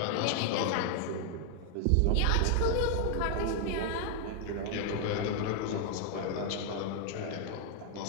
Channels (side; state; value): both; different; correlation 0.00